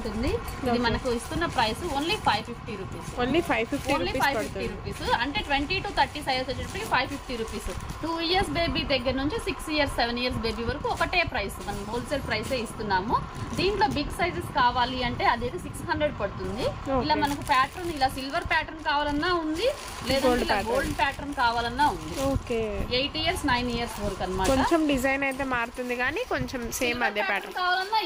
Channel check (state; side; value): identical; both; correlation 1.00